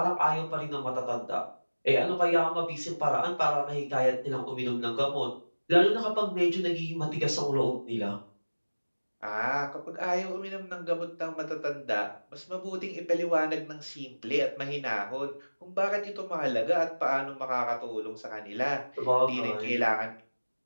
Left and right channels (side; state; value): both; inverted; correlation -1.00